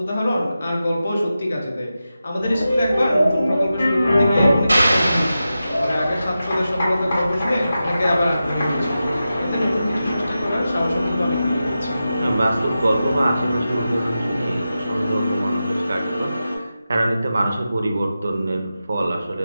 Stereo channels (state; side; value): inverted; both; correlation -0.92